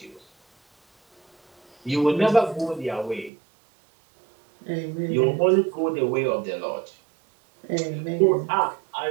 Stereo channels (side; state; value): left; drops out; at 3.3 s